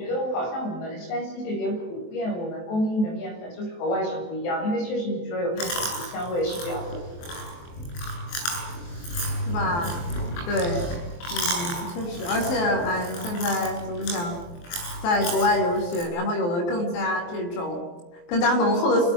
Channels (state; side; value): late; right; 23 ms